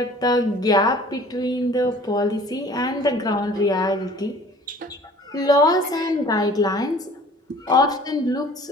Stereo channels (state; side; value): normal; both; correlation 0.49